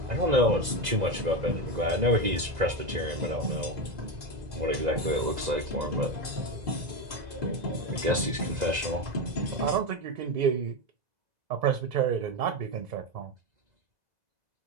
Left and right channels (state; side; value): late; left; 2.0 ms